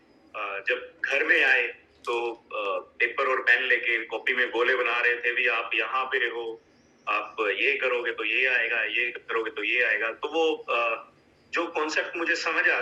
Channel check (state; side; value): identical; both; correlation 1.00